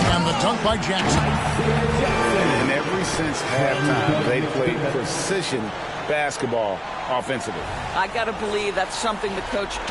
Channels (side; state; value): both; identical; correlation 1.00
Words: And the dunk by Jackson. And ever since halftime, they played precision basketball offensively. I got to believe that's something the coach